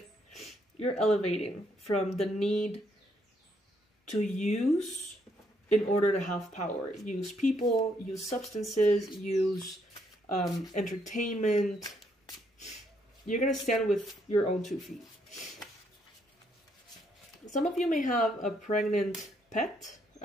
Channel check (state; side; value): normal; both; correlation 0.73